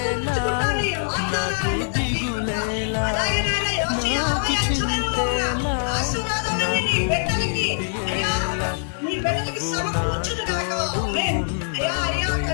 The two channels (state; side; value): silent; right; digital silence